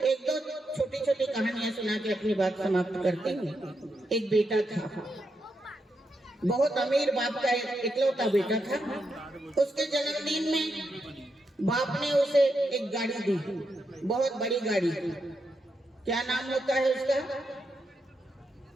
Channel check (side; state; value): both; normal; correlation 0.83